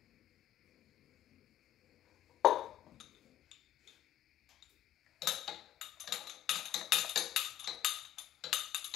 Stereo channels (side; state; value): right; quieter; 12.4 dB